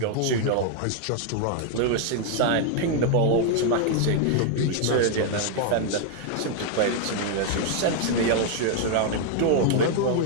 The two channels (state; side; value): different; both; correlation 0.00